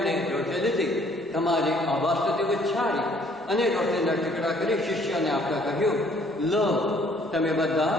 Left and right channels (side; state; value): both; normal; correlation 0.61